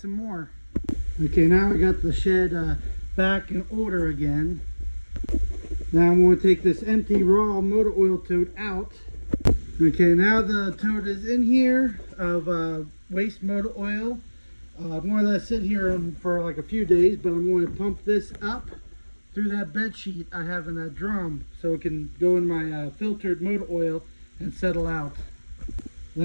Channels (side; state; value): both; inverted; correlation -1.00